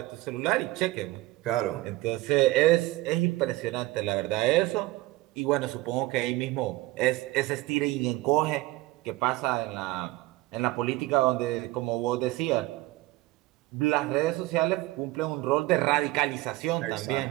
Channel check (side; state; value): left; quieter; 18.9 dB